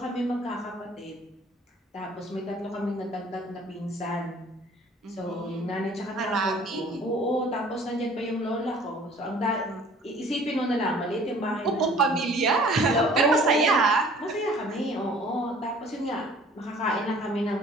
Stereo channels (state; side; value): normal; both; correlation 0.51